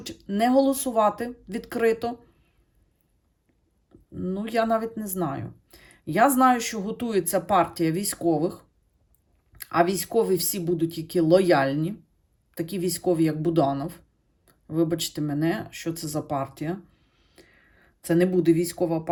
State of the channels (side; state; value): both; identical; correlation 1.00